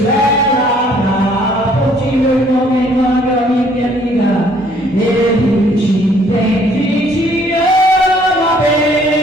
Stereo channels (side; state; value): both; normal; correlation 0.61